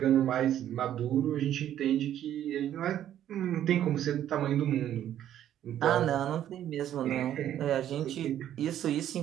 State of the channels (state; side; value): quieter; left; 11.2 dB